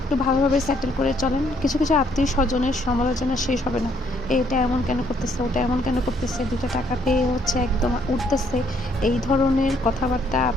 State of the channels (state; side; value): normal; both; correlation 0.68